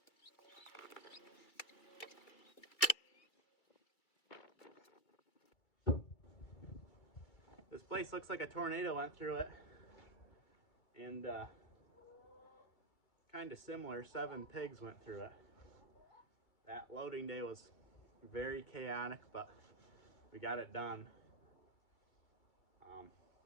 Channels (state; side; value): late; right; 2.3 ms